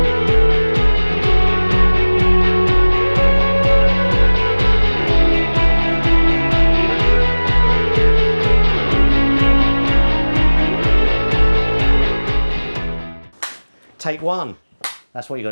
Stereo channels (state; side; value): inverted; both; correlation -1.00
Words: Take one. That's what you